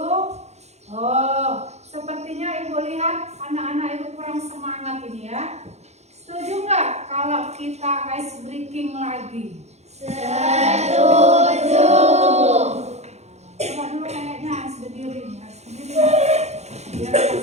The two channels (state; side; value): late; left; 0.32 ms